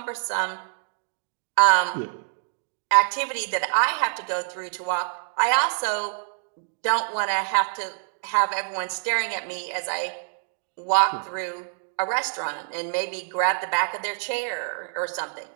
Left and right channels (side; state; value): left; silent; digital silence